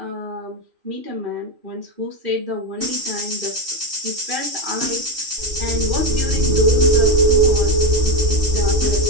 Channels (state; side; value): late; left; 2.5 ms